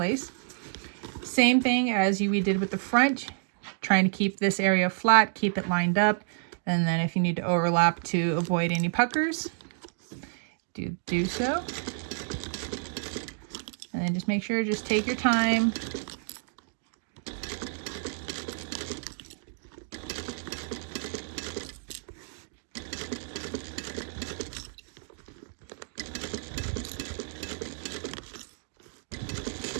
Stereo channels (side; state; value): left; silent; digital silence